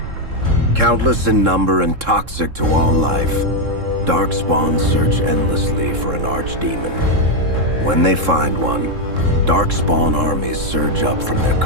Countless in number and toxic to all life, Darkspawn search endlessly for an archdemon. When they find one, Darkspawn armies surge up from their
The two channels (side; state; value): left; late; 3.7 ms